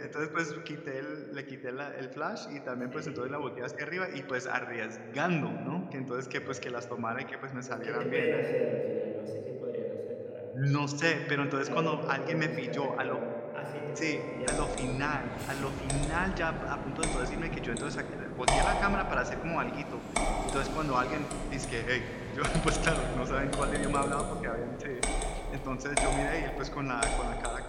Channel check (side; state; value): both; identical; correlation 1.00